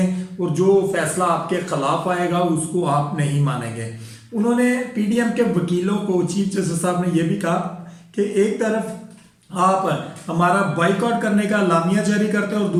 और जो फैसला आपके खिलाफ आएगा उसको आप नहीं मानेंगे। उन्होंने पीडीएम के वकीलों को, चीफ जस्टिस साहब ने यह भी कहा कि एक तरफ आप हमारा बाइकआउट करने का लामिया जारी करते हैं और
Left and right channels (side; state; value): both; identical; correlation 1.00